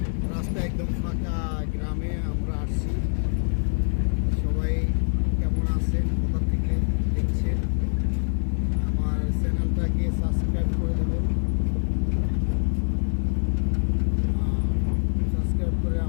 রাস্তা একদম ফাঁকা। গ্রামে আমরা আসছি। সবাই কেমন আছেন, কোথা থেকে দেখছেন? আমার চ্যানেলটাকে সাবস্ক্রাইব করে দেবেন, সাবস্ক্রাইব করে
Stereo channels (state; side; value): silent; right; digital silence